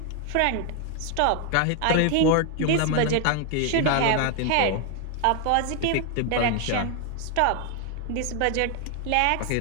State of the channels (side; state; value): both; different; correlation 0.00